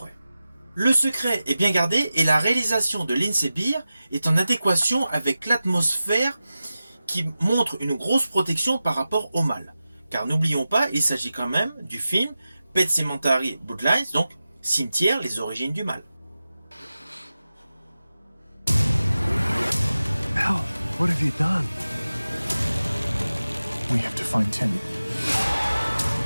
Le secret est bien gardé et la réalisation de Lindsay Beer est en adéquation avec l'atmosphère qui montre une grosse protection par rapport au mal. Car n'oublions pas, il s'agit quand même du film Pet Sematary Bloodlines, donc Cimetière, les origines du mal. Hell, what have you done? We have to find Timmy.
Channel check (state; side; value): inverted; both; correlation -0.94